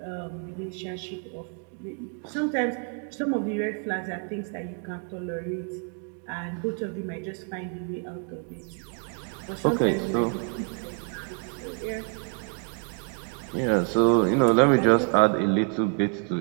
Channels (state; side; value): quieter; left; 37.6 dB